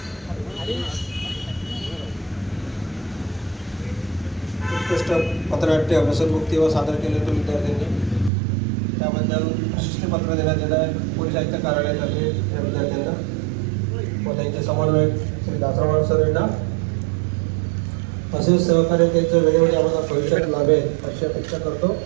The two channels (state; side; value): drops out; left; at 8.3 s